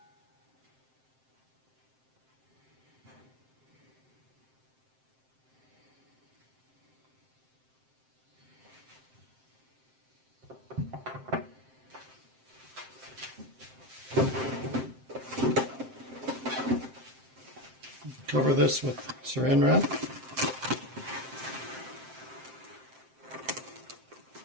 cover this with saran wrap.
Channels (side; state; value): left; late; 7.6 ms